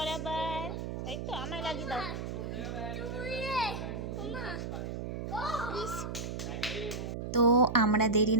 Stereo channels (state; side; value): noise; right; hum, 5 dB below the sound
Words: তাই তো? আমায় লাগিয়ে দাও। তো আমরা দেরি